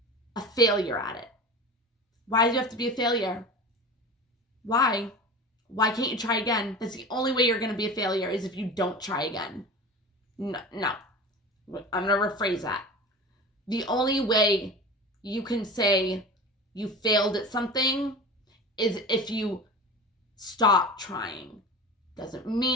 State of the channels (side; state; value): both; normal; correlation 0.32